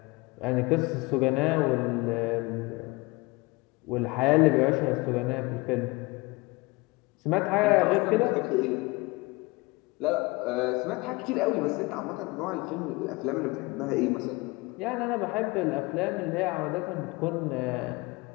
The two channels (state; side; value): quieter; right; 24.2 dB